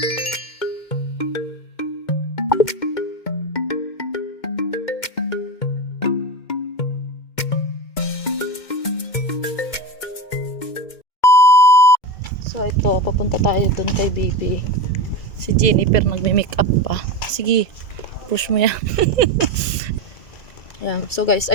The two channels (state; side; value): late; right; 2.1 ms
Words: So ito, papunta tayo dun kay baby. Si Jennifer nagme-makeup pa. Sige, push mo yan. Ayan. So guys,